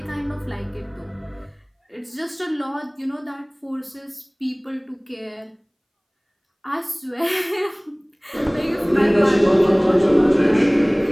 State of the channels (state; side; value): identical; both; correlation 1.00